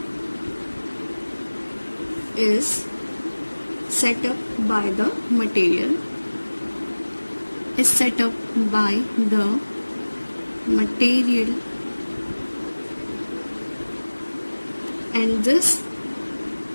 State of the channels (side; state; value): both; inverted; correlation -1.00